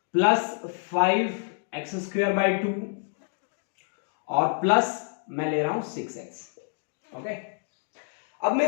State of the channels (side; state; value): right; silent; digital silence